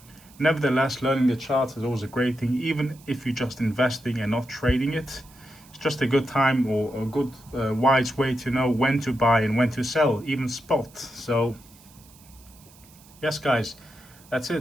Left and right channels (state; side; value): noise; right; hiss, 25 dB below the sound